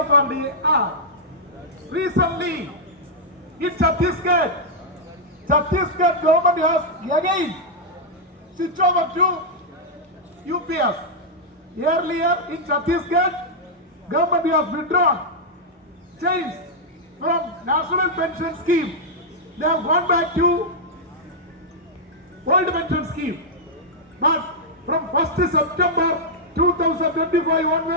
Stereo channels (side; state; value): both; normal; correlation -0.07